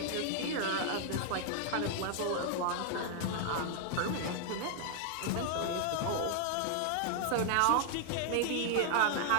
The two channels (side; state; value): both; different; correlation 0.00